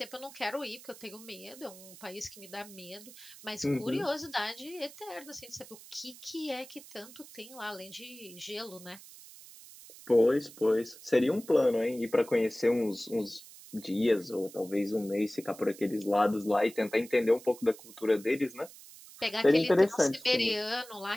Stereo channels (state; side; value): noise; right; hiss, 18 dB below the sound